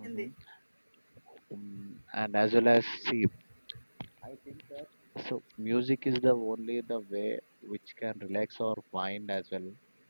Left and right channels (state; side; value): inverted; both; correlation -1.00